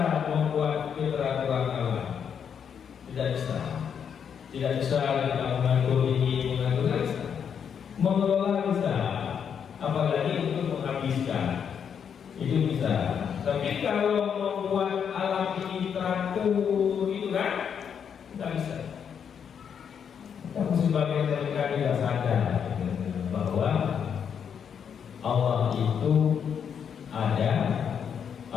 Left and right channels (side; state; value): right; quieter; 7.6 dB